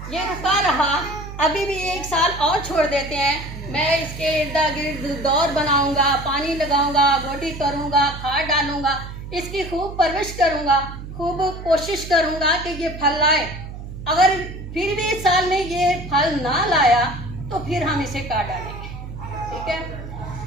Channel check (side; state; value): right; noise; hum, 11 dB below the sound